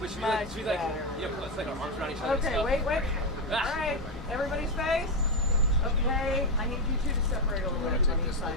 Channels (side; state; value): both; normal; correlation 0.07